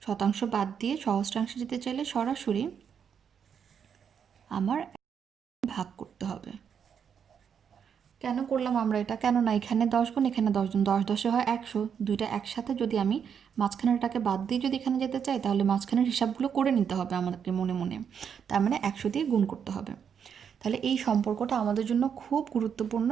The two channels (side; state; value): left; quieter; 7.5 dB